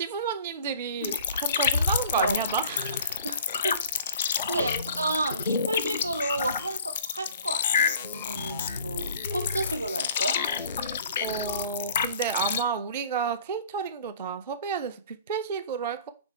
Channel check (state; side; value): inverted; both; correlation -0.49